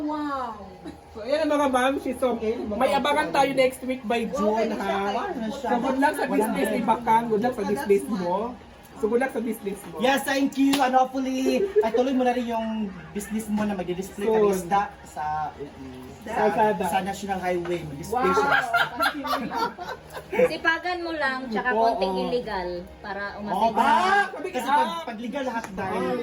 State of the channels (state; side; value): identical; both; correlation 1.00